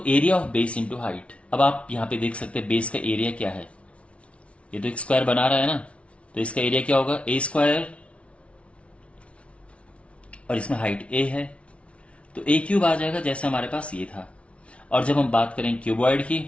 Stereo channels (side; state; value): right; late; 0.062 ms